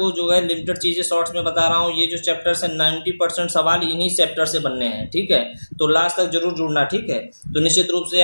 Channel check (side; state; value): both; inverted; correlation -1.00